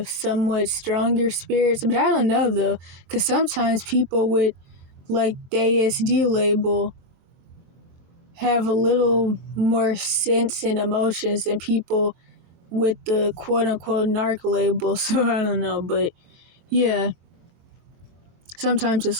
somewhat stronger spirits. But I don't know though, because sometimes people with like the ASD label have a little more sense and emotions than people with the quote unquote narc label. So I don't know, but yeah, sometimes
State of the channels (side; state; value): left; late; 22 ms